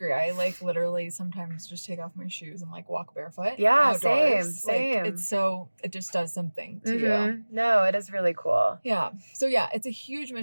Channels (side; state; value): both; inverted; correlation -1.00